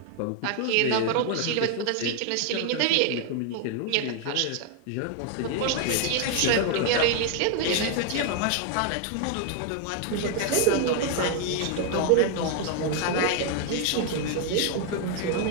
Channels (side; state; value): both; different; correlation 0.00